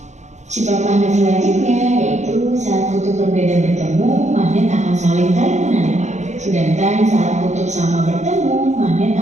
Sifat magnet selanjutnya yaitu saat kutub berbeda bertemu, magnet akan saling tarik menarik. Sedangkan saat kutub sama bertemu, magnet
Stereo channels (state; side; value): late; left; 0.34 ms